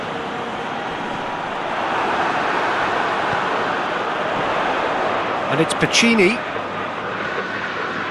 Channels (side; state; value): both; identical; correlation 1.00